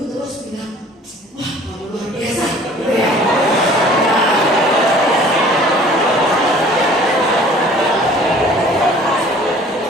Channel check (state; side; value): normal; both; correlation 0.51